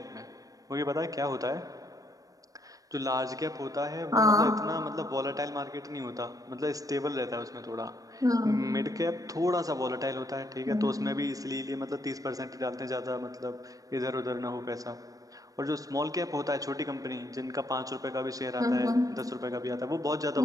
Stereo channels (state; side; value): late; left; 0.17 ms